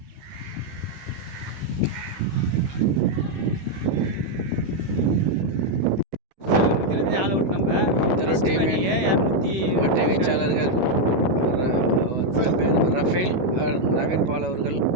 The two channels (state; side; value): late; left; 16 ms